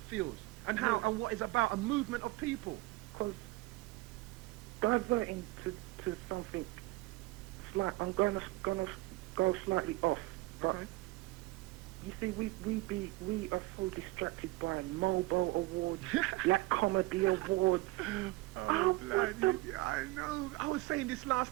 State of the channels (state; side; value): quieter; left; 20.5 dB